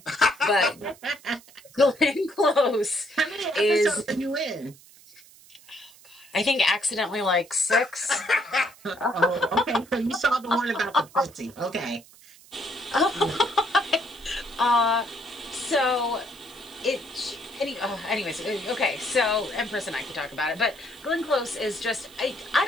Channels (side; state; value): right; noise; hiss, 24 dB below the sound